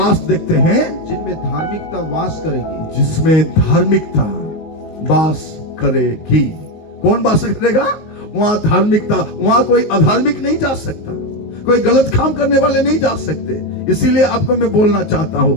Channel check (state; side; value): late; right; 19 ms